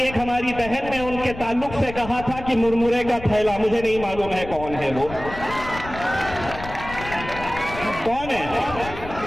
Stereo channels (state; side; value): noise; left; rumble, 12 dB below the sound